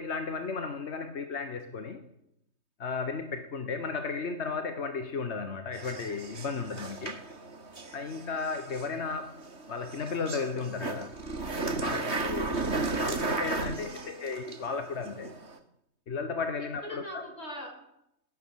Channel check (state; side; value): late; right; 3.2 ms